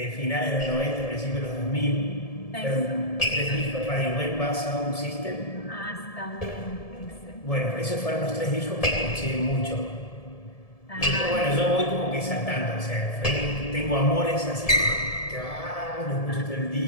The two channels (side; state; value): right; late; 1.7 ms